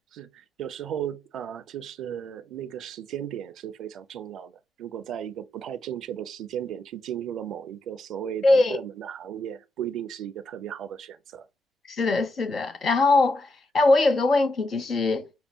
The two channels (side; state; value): both; normal; correlation 0.81